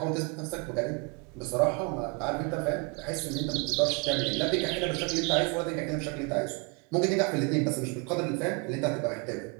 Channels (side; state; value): left; quieter; 30.9 dB